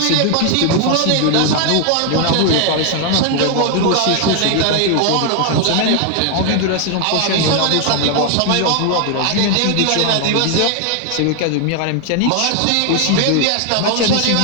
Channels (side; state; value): both; different; correlation 0.00